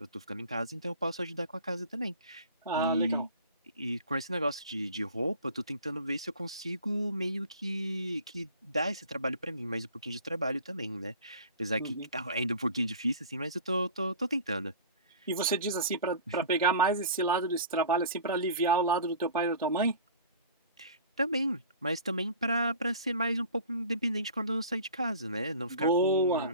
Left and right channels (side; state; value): both; inverted; correlation -0.41